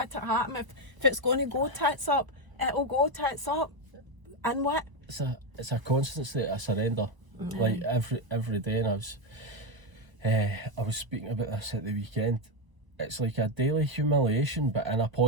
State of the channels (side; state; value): left; late; 1.0 ms